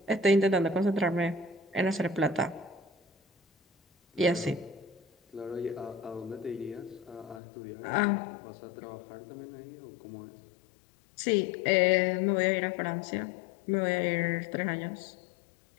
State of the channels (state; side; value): drops out; right; at 7.4 s